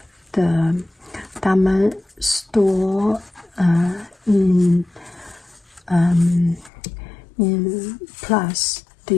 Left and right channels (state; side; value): drops out; right; at 6.7 s